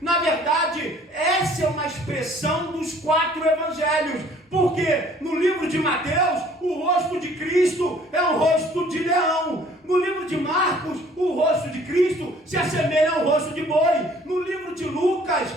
verdade, essa é uma expressão dos 4 evangelhos. Porque no livro de Mateus, o rosto de Cristo é um rosto de leão. No livro de Marcos, o rosto de Cristo se assemelha ao rosto de boi. No livro de Lucas,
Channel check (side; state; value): both; normal; correlation 0.55